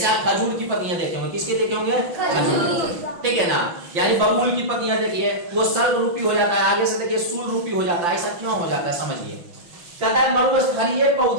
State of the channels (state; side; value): late; left; 5.8 ms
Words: आप खजूर की पत्तियां देखे होंगे। किसके देखे होंगे? खजूर। ठीक है ना, यानी बबूल की पत्तियां देखिए वो सल्क रूपी हो जाता है, आगे से देखिए सूल रूपी हो जाता है। ऐसा क्यों हो जाता है समझिए। कहता है मरुस्थलीय